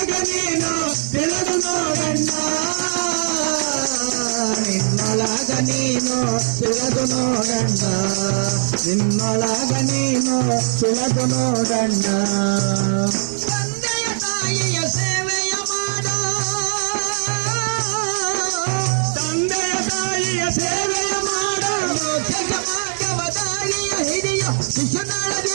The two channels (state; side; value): silent; left; digital silence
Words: ನೀನು ತಿಳಿದು ನೋಡಣ್ಣ ನಿನ್ನೊಳಗ ನೀನು ತಿಳಿದು ನೋಡಣ್ಣ ನಿನ್ನೊಳಗ ನೀನು ತಿಳಿದು ನೋಡಣ್ಣ ತಂದೆಯ ತಾಯಿಯ ಸೇವೆಯ ಮಾಡ ತಂದೆಯ ತಾಯಿಯ ಸೇವೆಯ ಮಾಡ ಮೋಕ್ಷ ಮಾರ್ಗವ ದಾರಿಯ ಹಿಡಿಯ ಶಿಶುನಾಳ